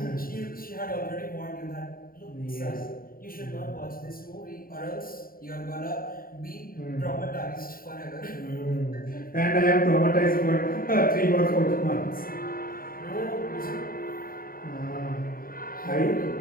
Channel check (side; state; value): right; late; 0.42 ms